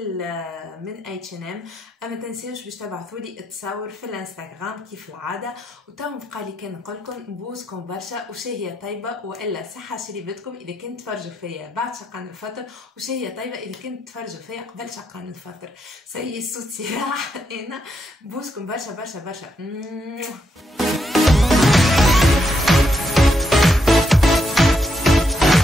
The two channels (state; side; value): normal; both; correlation 0.79